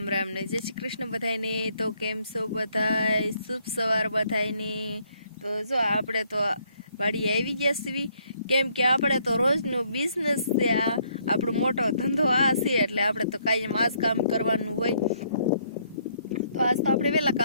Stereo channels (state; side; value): inverted; both; correlation -0.69